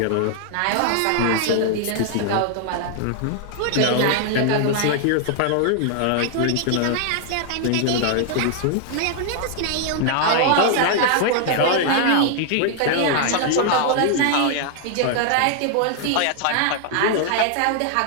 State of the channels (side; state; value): both; different; correlation 0.00